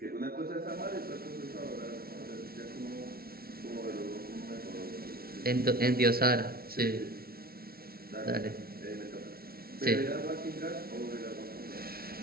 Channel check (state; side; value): late; left; 0.44 ms